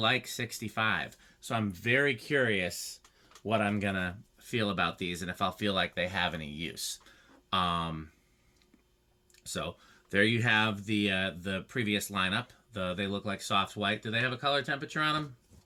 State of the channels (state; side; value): identical; both; correlation 1.00